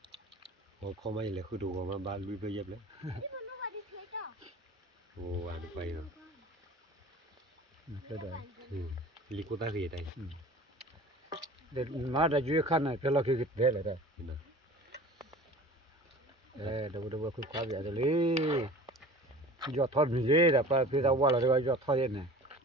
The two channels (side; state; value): both; normal; correlation 0.42